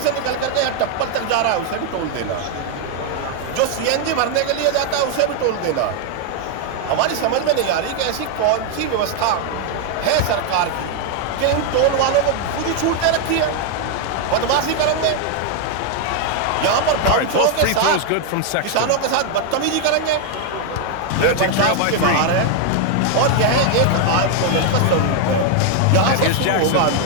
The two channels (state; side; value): different; both; correlation 0.00